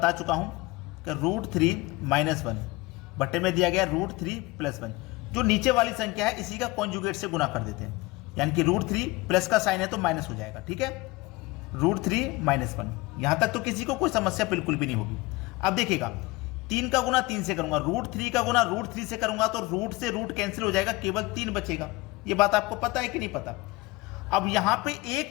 चुका हूं कि √3 - 1 बटे में दिया गया √3 + 1, जो नीचे वाली संख्या है इसी का कॉन्जुगेट से गुना कर देते हैं, यानी कि √3 प्लस का साइन है तो माइनस हो जाएगा। ठीक है, √3 - 1, यहां तक तो किसी को कोई समस्या बिल्कुल भी नहीं होगी। अब देखिएगा, 3 का गुना 3 से करूंगा, √3 का गुना √3 से करूंगा तो रूट से रूट कैंसिल हो जाएगा, केवल 3 बचेगा। ये बात आपको पता है कि नहीं पता? अब यहां पे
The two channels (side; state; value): right; quieter; 22.0 dB